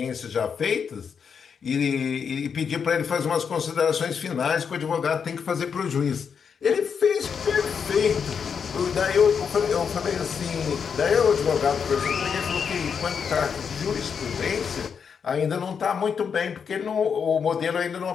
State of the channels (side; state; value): right; quieter; 6.6 dB